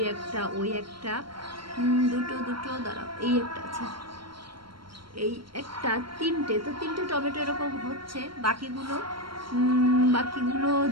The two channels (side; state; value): left; late; 0.73 ms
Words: একটা দুটো দাঁড়াও, এই একটা আছে, এই একটা তিনটে, তো তিনটে টমেটো এরকম হচ্ছে। বাকিগুলো